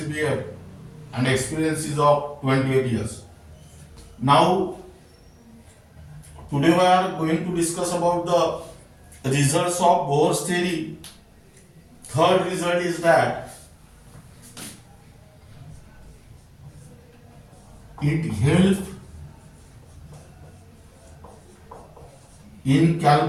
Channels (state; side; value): identical; both; correlation 1.00